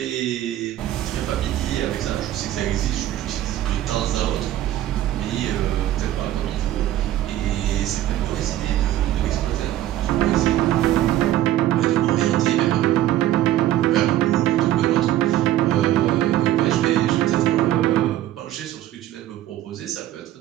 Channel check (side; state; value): left; quieter; 13.4 dB